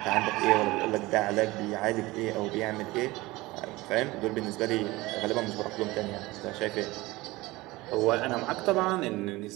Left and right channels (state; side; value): quieter; left; 20.3 dB